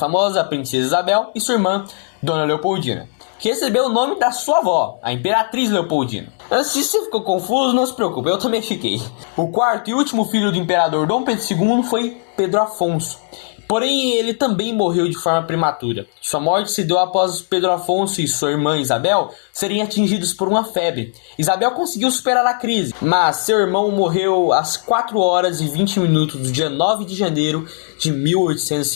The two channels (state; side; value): silent; right; 67 dB below the other